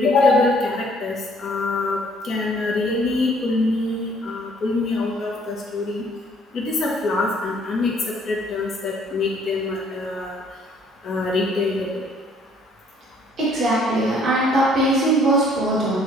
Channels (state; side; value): normal; both; correlation 0.61